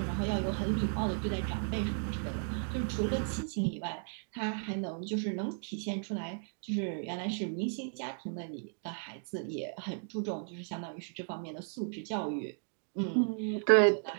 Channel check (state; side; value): silent; left; 55 dB below the other